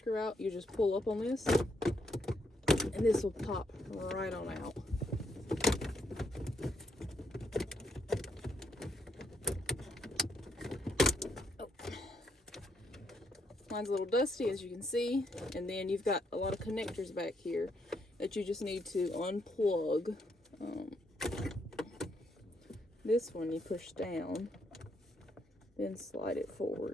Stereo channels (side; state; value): both; normal; correlation 0.75